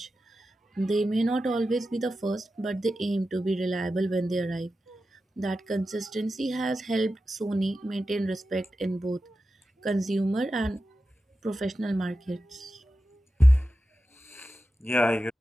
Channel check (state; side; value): normal; both; correlation 0.92